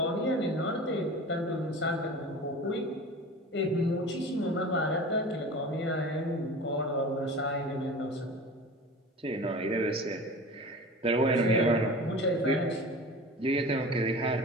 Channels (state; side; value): normal; both; correlation 0.36